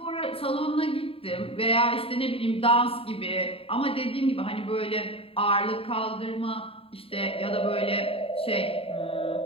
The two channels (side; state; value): right; late; 0.27 ms